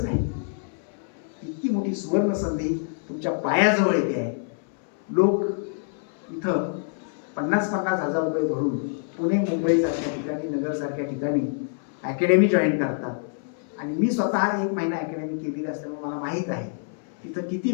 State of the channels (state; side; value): silent; right; 60 dB below the other